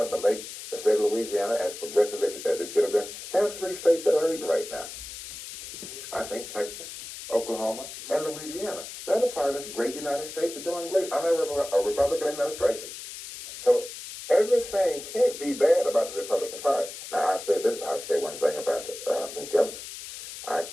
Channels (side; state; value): left; noise; hiss, 11 dB below the sound